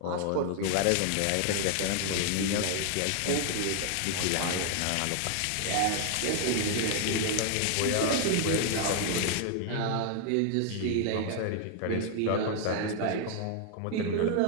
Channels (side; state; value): both; different; correlation 0.00